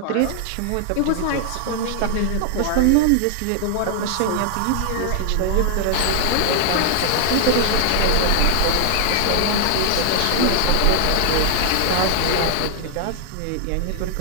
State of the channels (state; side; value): different; both; correlation 0.00